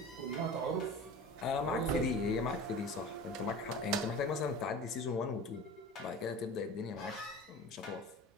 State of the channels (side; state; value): both; normal; correlation 0.36